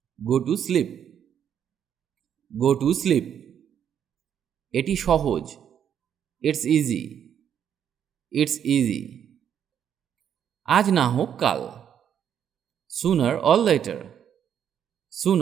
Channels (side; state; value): left; quieter; 8.9 dB